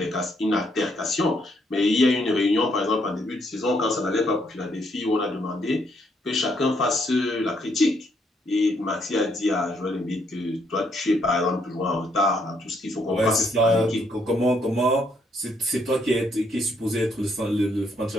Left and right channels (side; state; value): both; normal; correlation 0.72